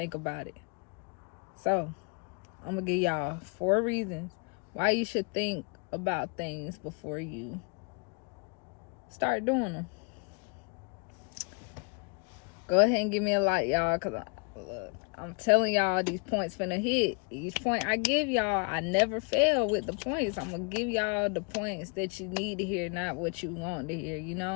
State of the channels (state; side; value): quieter; right; 35.8 dB